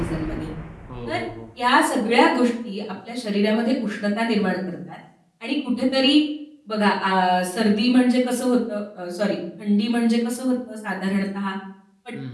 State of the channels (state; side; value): identical; both; correlation 1.00